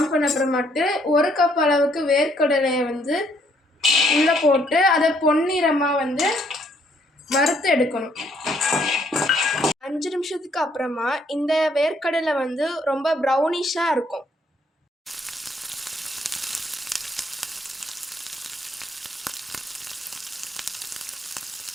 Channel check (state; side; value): normal; both; correlation 0.68